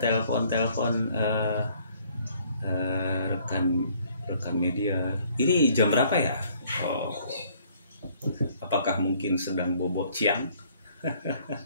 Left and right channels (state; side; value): inverted; both; correlation -0.61